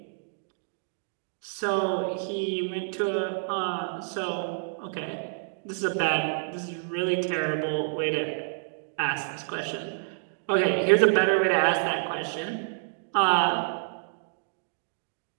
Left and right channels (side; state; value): left; silent; digital silence